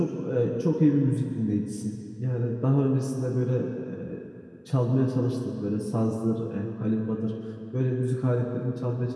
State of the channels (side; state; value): both; identical; correlation 1.00